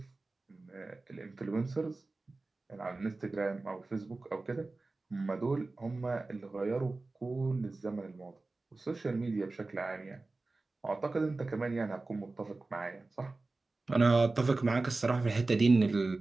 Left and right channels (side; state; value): left; quieter; 3.4 dB